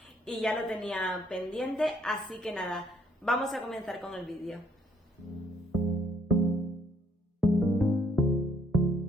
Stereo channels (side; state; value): both; normal; correlation 0.66